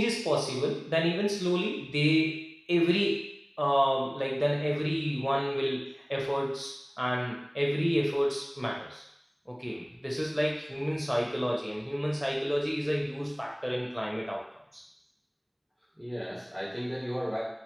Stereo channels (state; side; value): identical; both; correlation 1.00